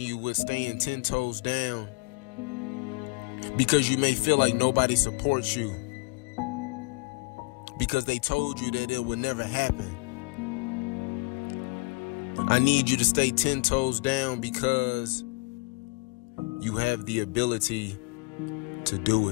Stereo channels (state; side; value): quieter; right; 29.2 dB